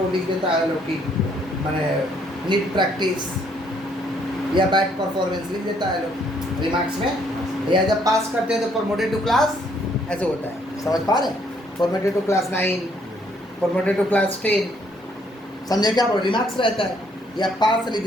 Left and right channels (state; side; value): normal; both; correlation 0.68